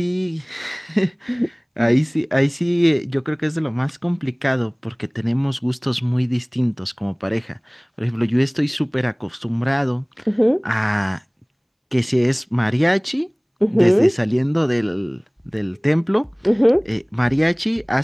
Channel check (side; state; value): both; identical; correlation 1.00